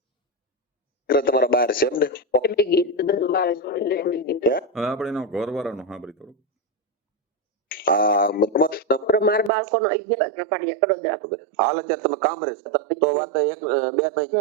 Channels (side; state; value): left; drops out; at 9.5 s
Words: તમારા બહાર છે એમ ને? હવે આપણે એનો ઘરવાળાનો સાંભળી થોડું. મારા બાળકોનો 11 પાડિયા કડોદરા. હાલ અત્યારે તમે કામ રહે તો વાત